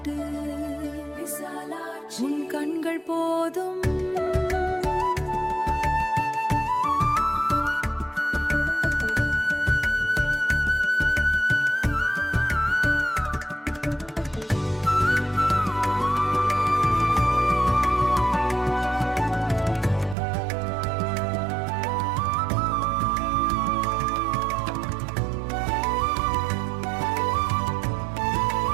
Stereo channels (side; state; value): left; drops out; at 20.2 s